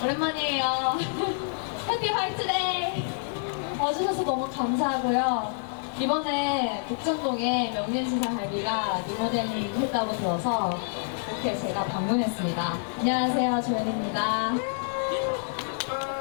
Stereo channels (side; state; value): right; silent; digital silence